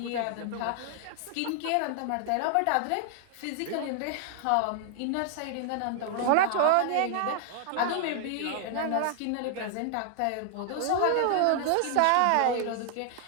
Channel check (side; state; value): both; different; correlation 0.00